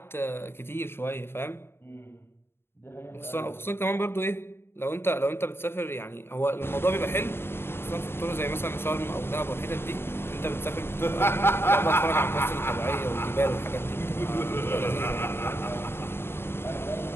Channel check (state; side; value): late; right; 0.11 ms